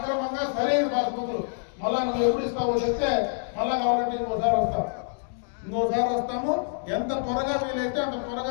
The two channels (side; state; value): right; silent; digital silence